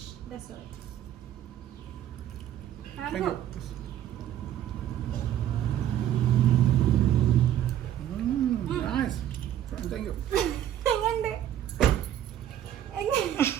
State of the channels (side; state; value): left; quieter; 11.2 dB